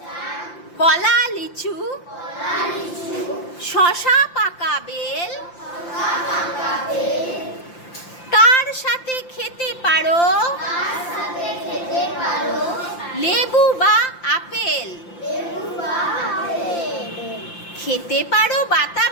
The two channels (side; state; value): right; late; 5.8 ms